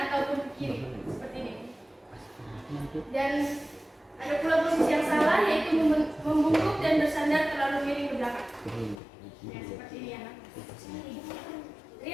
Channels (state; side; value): drops out; right; at 9.0 s